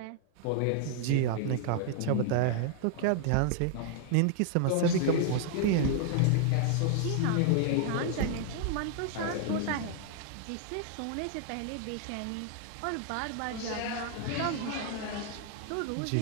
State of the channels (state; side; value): different; both; correlation 0.00